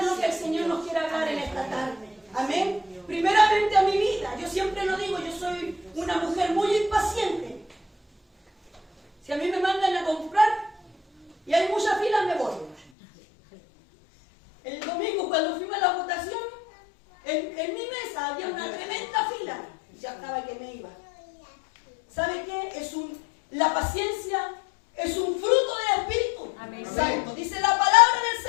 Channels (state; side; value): drops out; right; at 12.8 s